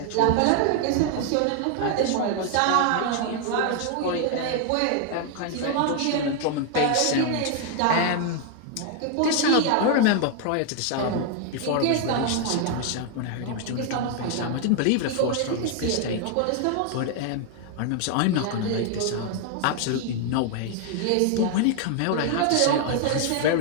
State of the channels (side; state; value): both; different; correlation 0.00